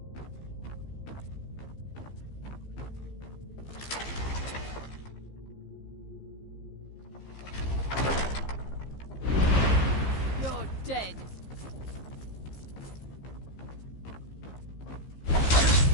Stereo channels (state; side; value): late; right; 15 ms